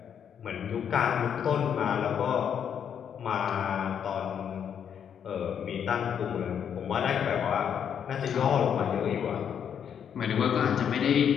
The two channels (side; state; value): right; quieter; 8.2 dB